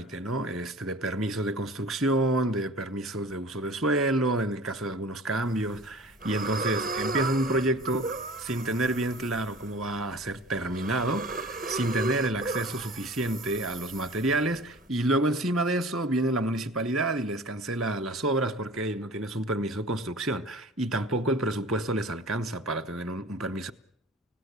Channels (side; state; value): both; normal; correlation 0.43